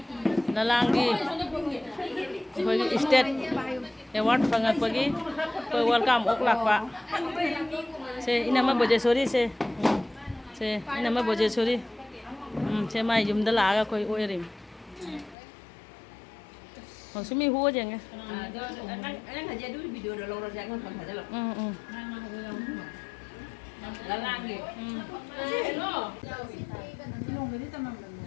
lalang di bagi state award fangakpa gi welcome oklak pak se ini mah Bojesori se ini mah Bojesori se mai jum dah laga koi oirim maksudnya hu aja nggak? Anh aja dulu video udah lorong jangan kan aja loh. Lalang gitu.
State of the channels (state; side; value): drops out; right; at 15.4 s